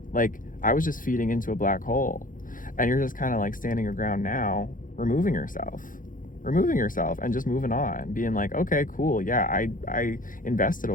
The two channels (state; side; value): late; right; 0.39 ms